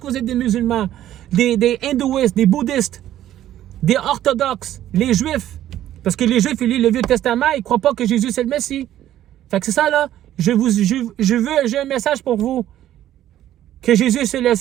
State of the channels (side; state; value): left; quieter; 12.5 dB